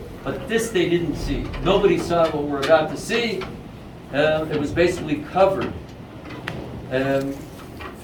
but this they didn't see. Nobody saw what we're about to see. It was basically covered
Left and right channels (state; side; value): identical; both; correlation 1.00